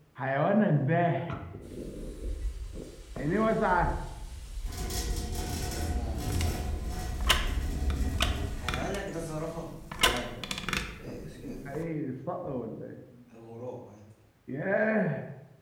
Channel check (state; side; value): identical; both; correlation 1.00